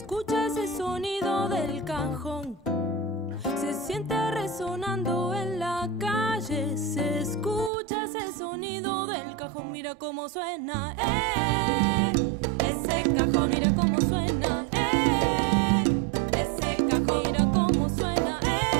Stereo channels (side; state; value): left; drops out; at 7.7 s